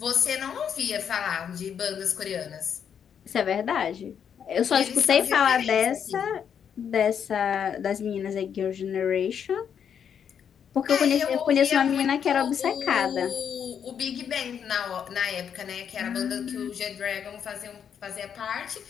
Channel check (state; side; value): quieter; right; 8.0 dB